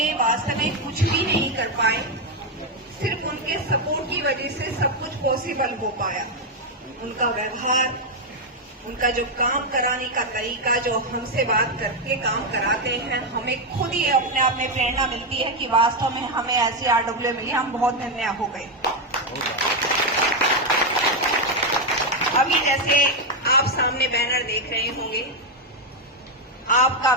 वास्तव में कुछ भी नहीं कर पाए, सिर्फ उनके सपोर्ट की वजह से सब कुछ पॉसिबल हो पाया। उनका व्यवहार, उनका जो काम कराने का तरीका, जो हमसे बात करके काम कराते हैं, हमें खुद ही अपने आप में प्रेरणा मिलती है कि वास्तव में हमें ऐसी आरडब्ल्यू मिली, हम बहुत धन्य हो गए। अभी जैसे आप सामने बैनर देख रहे होंगे, आपका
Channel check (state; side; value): normal; both; correlation 0.04